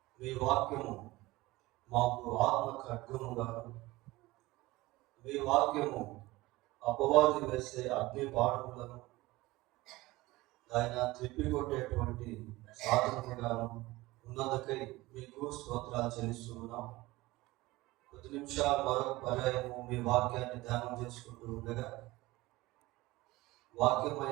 మీ వాక్యము మాకు ఆత్మ ఖడ్గముగాను, మీ వాక్యము అపవాది వేసే అగ్ని బాణములను ఆయన త్రిప్పికొట్టేటువంటి సాధనముగాను ఉన్నందుకై మీకు స్తోత్రాలు చెల్లిస్తున్నాం. కొద్ది నిమిషాలు మరొక పర్యాయము మీ వాక్యాన్ని ధ్యానం చేసుకుంటూ ఉండగా,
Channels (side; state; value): left; quieter; 19.7 dB